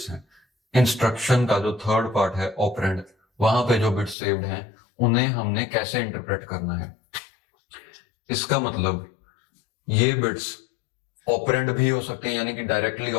हैं इंस्ट्रक्शन का जो थर्ड पार्ट है ऑपरेंड, वहां पे जो बिट्स सेव्ड हैं उन्हें हमने कैसे इंटरप्रेट करना है। इसका मतलब ये बिट्स ऑपरेंड भी हो सकते हैं, यानी कि डायरेक्टली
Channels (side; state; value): right; drops out; at 4.2 s